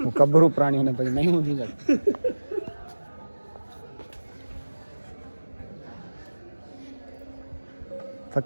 मुकब्बरू प्राणी होने पर नहीं होनी चाहिए।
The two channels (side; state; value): both; inverted; correlation -1.00